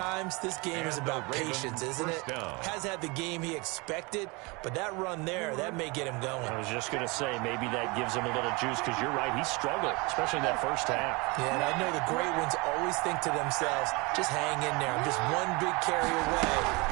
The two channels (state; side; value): quieter; left; 26.9 dB